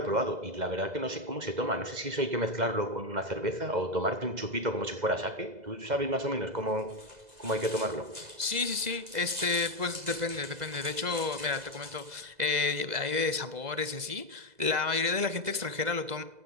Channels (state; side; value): late; left; 2.0 ms